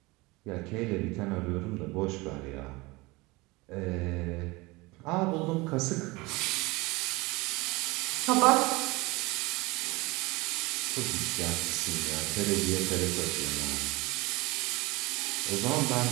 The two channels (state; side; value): quieter; left; 23.1 dB